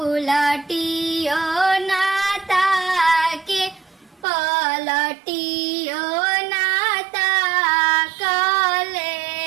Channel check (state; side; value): drops out; left; at 4.2 s